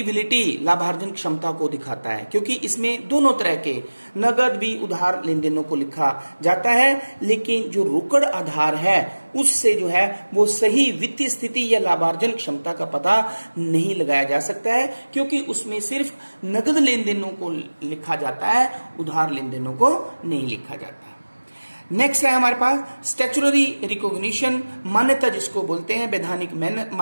लाभार्जन क्षमता को दिखाता है, क्योंकि इसमें दोनों तरह के नगद भी, उधार लेन देनों को लिखा जाता है। लेकिन जो रोकड़ आधार है उससे जो है वो सही वित्तीय स्थिति या लाभार्जन क्षमता का पता नहीं लगाया जा सकता है, क्योंकि उसमें सिर्फ नगद लेन देनों को लिखा जाता है, उधार लेन देनों को नहीं लिखा जाता। नेक्स्ट है हमारे पास स्टैच्यूटरी रिकॉग्निशन, मान्यता जिसको बोलते हैं, वैधानिक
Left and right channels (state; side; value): inverted; both; correlation -1.00